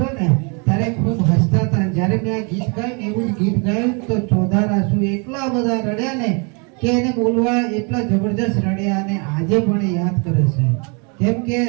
ને ત્યારે ખૂબ હસતા હતા. જ્યારે મેં આ ગીત ગાયું ને એવું જ ગીત ગાયું તો ચોધાર આંસુ એટલા બધા રડ્યા ને કે એને બોલવા એટલા જબરજસ્ત રડ્યા અને આજે પણ યાદ કરે છે. કેમ કે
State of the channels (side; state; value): left; quieter; 33.8 dB